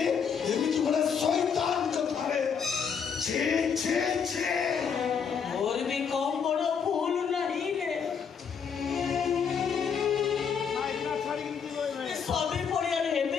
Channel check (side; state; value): right; quieter; 6.7 dB